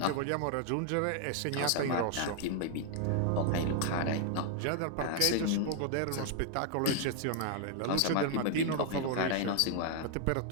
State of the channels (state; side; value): different; both; correlation 0.00